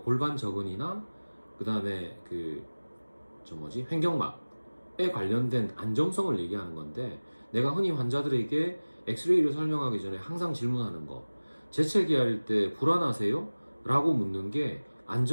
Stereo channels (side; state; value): both; inverted; correlation -1.00